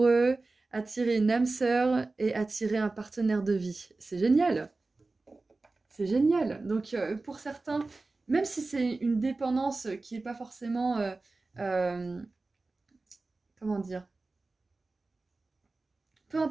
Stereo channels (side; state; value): left; quieter; 3.4 dB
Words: attirer une âme sœur et attirer un partenaire de vie, c'est génial. C'est génial. Donc pour certains, même si c'est une dépendance qui n'est pas forcément, comment dire, peu